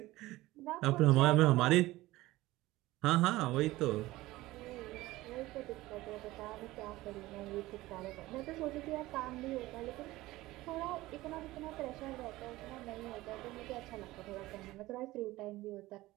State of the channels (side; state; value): left; quieter; 18.1 dB